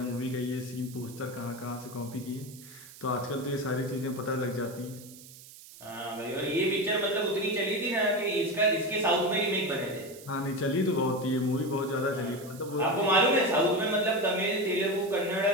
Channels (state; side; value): noise; right; hiss, 18 dB below the sound